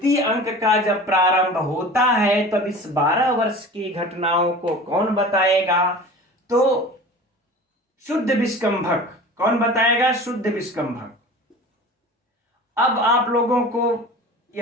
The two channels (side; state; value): both; normal; correlation 0.38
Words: अंक का जब प्रारंभ होता है तब इस 12 वर्ष की घटनाओं को कौन बताएगा, तो शुद्ध विष्कंभक। कौन बताएगा, शुद्ध विष्कंभक। अब आप लोगों को